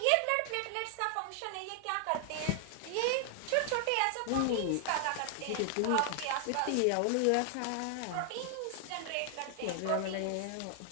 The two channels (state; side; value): different; both; correlation 0.00